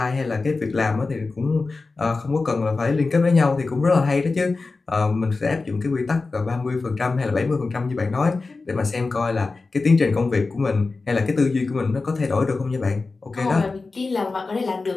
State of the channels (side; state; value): right; quieter; 3.9 dB